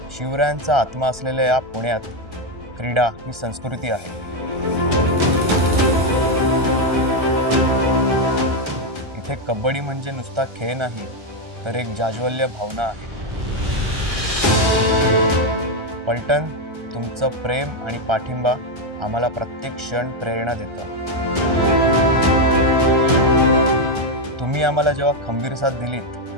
शिवरायांचा आत्मा असलेल्या या पुण्यात क्रीडा ही संस्कृती आहे। इथे कबड्डी म्हणजे नुसता खेळ नाही तर एक जाज्वल्य भावना आहे। पलटण, तुमचं प्रेम आणि पाठिंबा आम्हाला प्रत्येक क्षण प्रेरणा देतो। तुम्ही आम्हाला जेव्हा खंबीर साथ दिलीत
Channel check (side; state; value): left; late; 1.3 ms